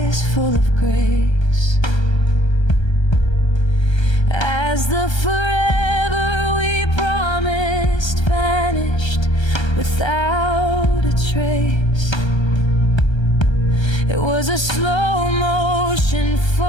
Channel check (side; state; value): right; late; 1.3 ms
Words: full of grace. As the forever we promised vanished without a trace. It was a slow motion